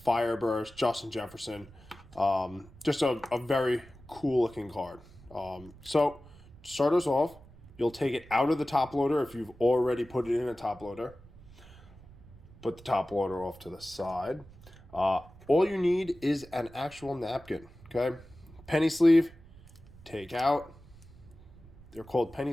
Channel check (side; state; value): right; noise; rumble, 22 dB below the sound